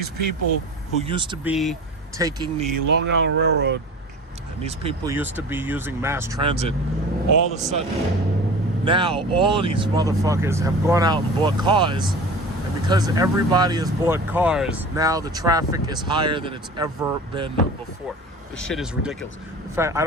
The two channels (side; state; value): both; normal; correlation 0.37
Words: people who used to be taking the Long Island Railroad, and these people used to be using mass transit, all of a sudden, now all of these motherfuckers have gone out and bought cars. And because everybody has bought cars, now the traffic is higher than it's ever been before. This shit is ridiculous. In fact, I